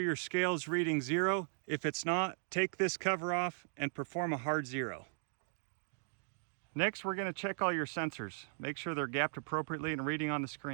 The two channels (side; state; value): left; silent; digital silence